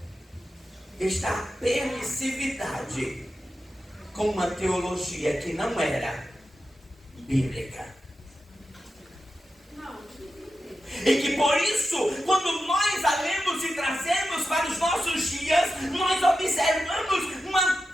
está a permissividade com uma teologia que não era bíblica. E que por isso, quando nós a lemos e trazemos para os nossos dias, nós observamos uma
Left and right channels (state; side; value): normal; both; correlation 0.91